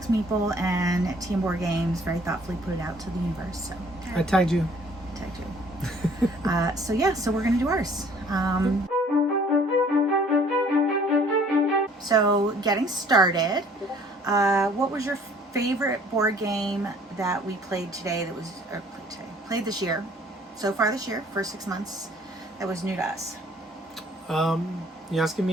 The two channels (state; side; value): normal; both; correlation 0.56